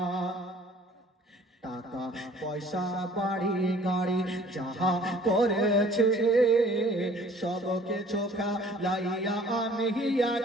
টাকা পয়সা বাড়ি গাড়ি যাহা করেছে সবকে চোখা লাইয়া আমি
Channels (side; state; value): both; normal; correlation 0.53